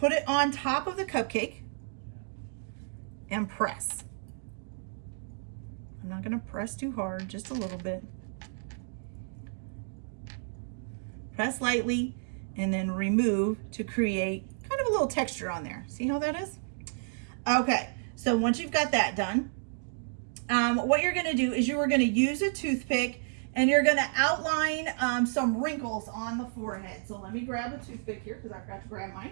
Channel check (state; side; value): silent; left; digital silence